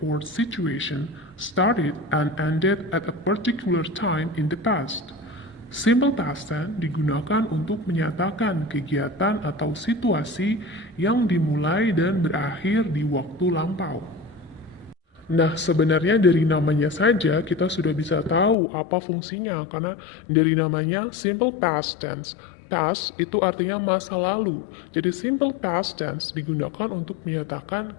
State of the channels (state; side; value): drops out; right; at 18.6 s